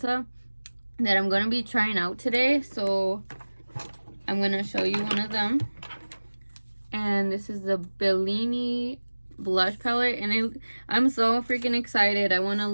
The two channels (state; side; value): inverted; both; correlation -1.00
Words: that I'm going to be trying out today. So I'm going to show you one of them, and this is the Bellini blush palette, and I'm so freaking excited. I want to